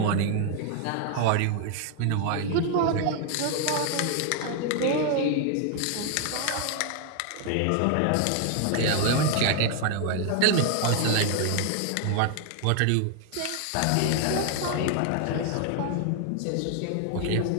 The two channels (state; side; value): different; both; correlation 0.00